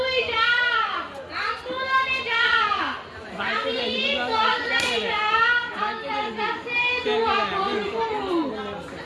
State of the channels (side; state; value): both; identical; correlation 1.00